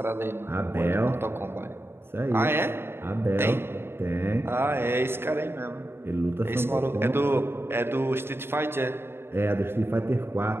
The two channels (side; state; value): left; late; 0.11 ms